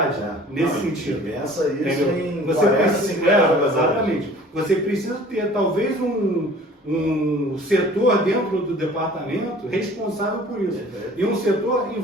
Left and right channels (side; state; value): both; normal; correlation 0.48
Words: nesse sentido. Pensa isso em você 40, 50 exatamente. Você precisa ter talvez um setor dentro do departamento responsável por isso. E um setor